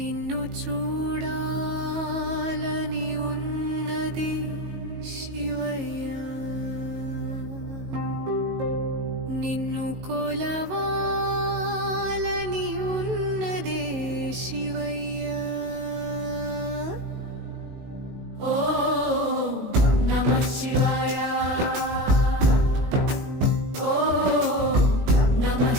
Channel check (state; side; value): late; left; 19 ms